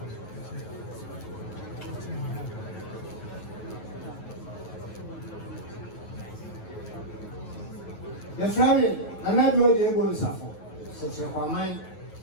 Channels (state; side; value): late; right; 9.3 ms